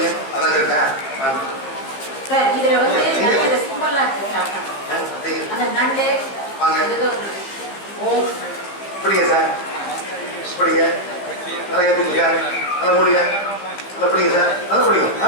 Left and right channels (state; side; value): late; right; 15 ms